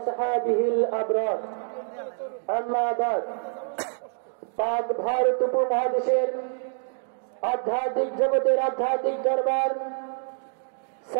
الأبرار। أما بعد, পাক ভারত উপমহাদেশের আধ্যাত্মিক জগতের আধ্যাত্মিক দরবার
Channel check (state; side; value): silent; left; digital silence